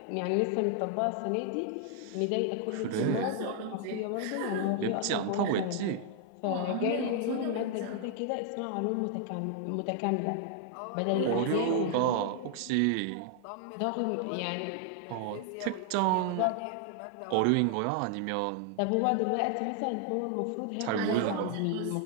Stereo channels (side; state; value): both; different; correlation 0.00